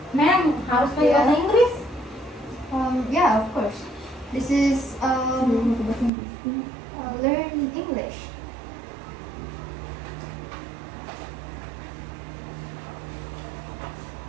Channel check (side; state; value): left; drops out; at 6.1 s